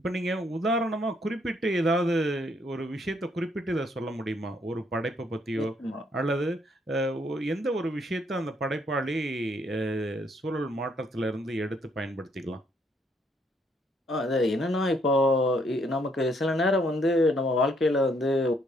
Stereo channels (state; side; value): normal; both; correlation 0.70